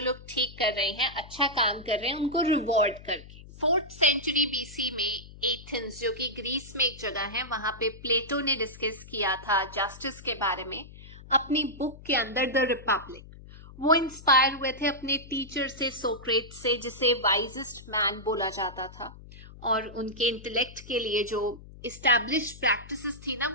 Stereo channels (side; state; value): left; noise; hum, 18 dB below the sound